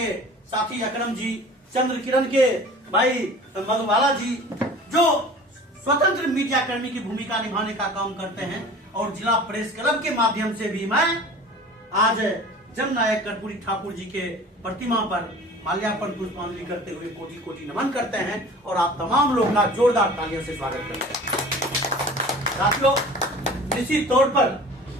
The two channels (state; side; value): normal; both; correlation 0.42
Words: साथी अकरम जी, चंद्र किरण के भाई मधुबाला जी जो स्वतंत्र मीडिया कर्मी की भूमिका निभाने का काम करते हैं और जिला प्रेस क्लब के माध्यम से भी मैं आज जननायक कर्पूरी ठाकुर जी के प्रतिमा पर माल्यार्पण पुष्पांजलि करते हुए कोटि कोटि नमन करते हैं और आप तमाम लोग का जोरदार तालियों से स्वागत करते हैं। साथियों, निश्चित तौर पर